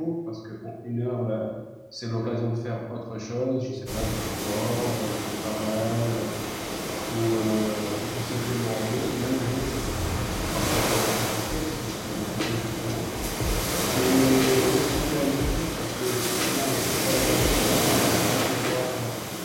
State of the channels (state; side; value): identical; both; correlation 1.00